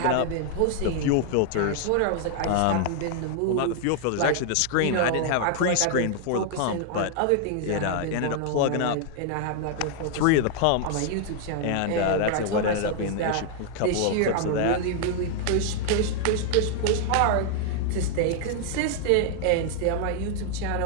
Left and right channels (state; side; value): different; both; correlation 0.00